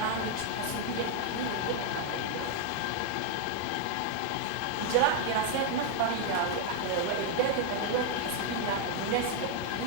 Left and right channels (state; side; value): different; both; correlation 0.00